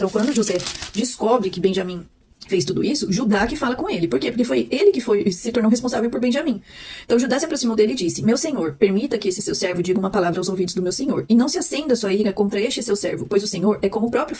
quando José descobre que Benjamim fez tudo isso, Judá que fala com ele. Por quê? Porque foi ele que se tornou responsável por Benjamim. Então Judá se aproximou dele e disse: Meu senhor, permita que esse seu servo diga uma palavra aos ouvidos do meu senhor, e não se acenda sua ira contra este seu servo, pois o senhor é como o próprio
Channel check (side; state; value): both; identical; correlation 1.00